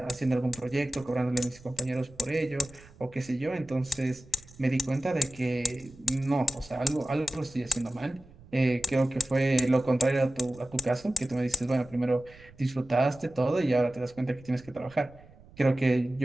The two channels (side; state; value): right; noise; rumble, 23 dB below the sound